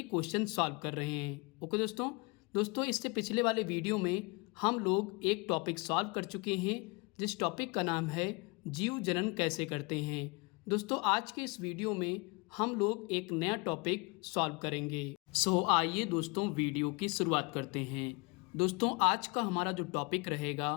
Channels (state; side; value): quieter; right; 28.7 dB